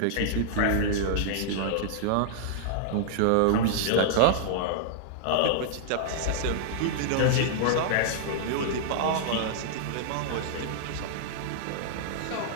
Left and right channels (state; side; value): different; both; correlation -0.01